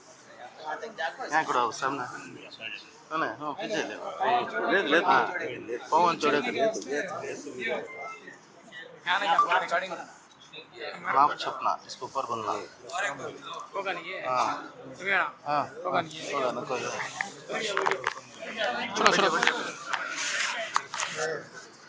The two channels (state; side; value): identical; both; correlation 1.00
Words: وہاں تک جا کر یہاں کڑا ہو سامنے ہاں پیچھے لے ہاں پاؤں چوڑا کرے معاف چھپنا اس کو اوپر بننا ہاں ہاں ہوگا نا کوئی